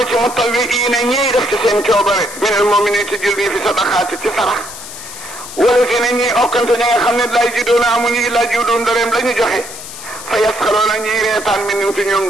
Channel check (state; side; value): noise; left; hiss, 12 dB below the sound